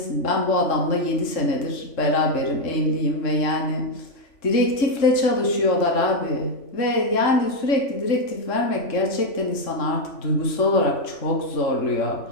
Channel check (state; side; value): late; right; 3.7 ms